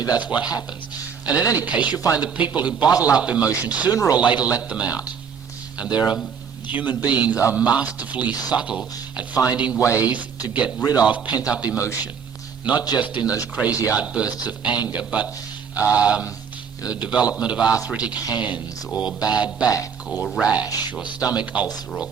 that's what happens. And in any case, you find that people who bottle up emotion sooner or later let them out. And human beings are masterfully subtle at finding ways to get rid of pent-up emotion. Not just in those crazy outbursts of anger, but the development of arthritic hands, or bad back, or rash, or stomach ulcer, or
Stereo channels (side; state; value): left; quieter; 6.9 dB